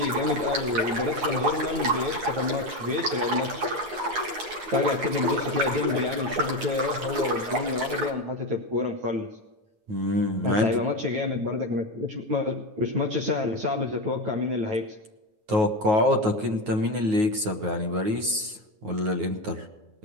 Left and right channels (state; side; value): late; left; 9.4 ms